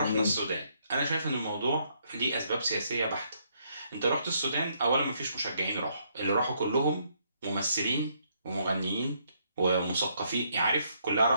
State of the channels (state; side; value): inverted; both; correlation -0.72